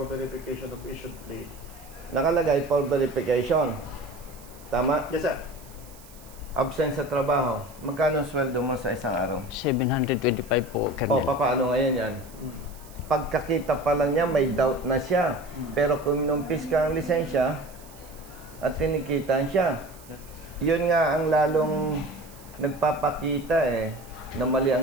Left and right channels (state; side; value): noise; right; hiss, 22 dB below the sound